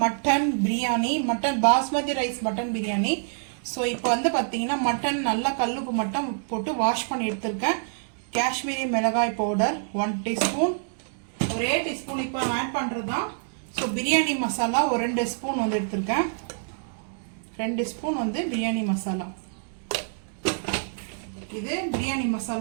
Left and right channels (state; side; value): silent; left; digital silence